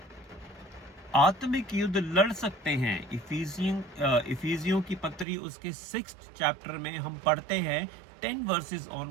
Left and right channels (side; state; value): left; drops out; at 5.2 s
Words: आत्मिक युद्ध लड़ सकते हैं। इफिसियों की पत्री उसके 6th चैप्टर में हम पढ़ते हैं 10 वर्सेस